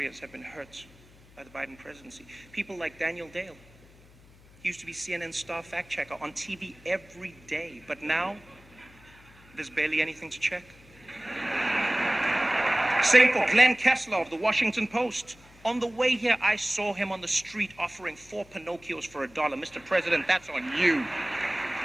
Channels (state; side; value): noise; left; hum, 25 dB below the sound